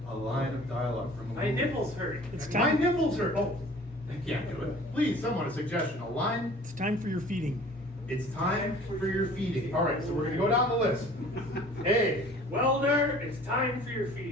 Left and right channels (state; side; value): normal; both; correlation 0.49